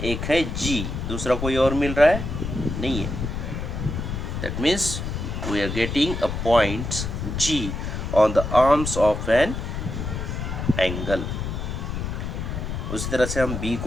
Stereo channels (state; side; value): noise; left; rumble, 4 dB below the sound